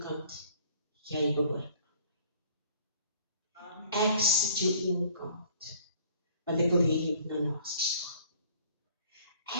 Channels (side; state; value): both; inverted; correlation -0.56